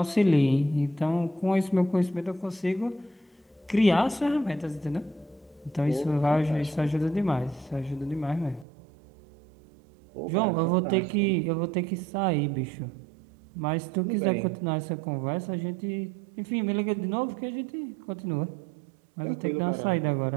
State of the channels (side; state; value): left; drops out; at 8.7 s